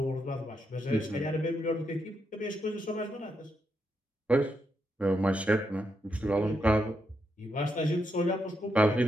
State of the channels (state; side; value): normal; both; correlation 0.82